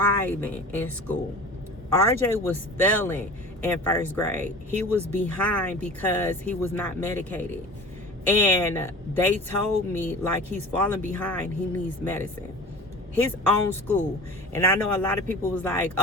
in school. RJ was failing in first grade. He was behind because he was not medicated. And they told me, like, he's falling behind, he needs medicine. His own school. And I know a lot of people was like,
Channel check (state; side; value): normal; both; correlation 0.38